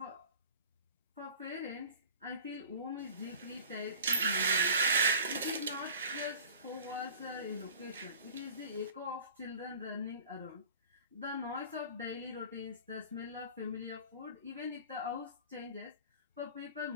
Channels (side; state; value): both; inverted; correlation -0.42